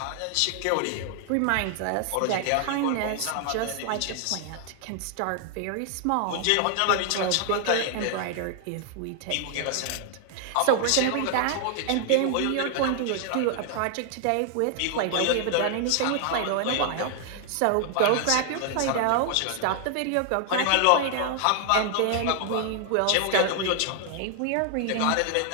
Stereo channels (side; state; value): both; different; correlation 0.00